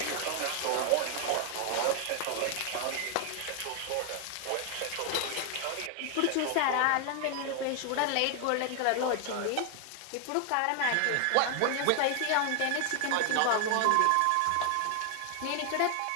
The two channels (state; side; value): different; both; correlation 0.00